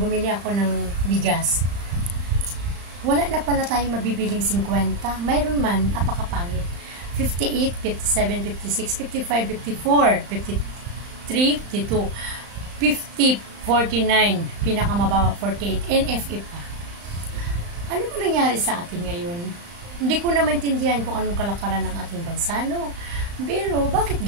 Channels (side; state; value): left; late; 35 ms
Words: ako ng bigas. Wala na pala tayong mabibiling 50. Mayroon man, apakapangit. 58, 57, 56, 55, 54, 53, 52, 50, 49, pinakamababa 48, NFA pa. Ano ba nangyari sa atin ngayon? Hindi ko na maintindihan kung anong kalakaran ng ating bansa, no? Pero, bakit